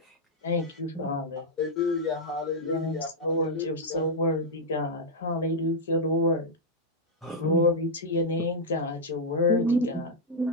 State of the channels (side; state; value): both; normal; correlation -0.04